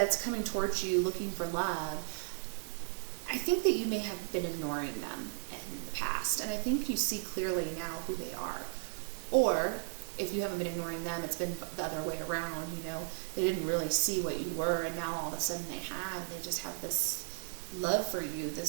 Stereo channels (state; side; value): silent; left; digital silence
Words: coming towards you looking for love, I think that you may have been ignoring them in the past, and I think you see clearly now who they are. Or if you haven't been ignoring them, it's been the other way around. You know, they didn't really see what you were, and now all of a sudden they have. They just have this love for you, this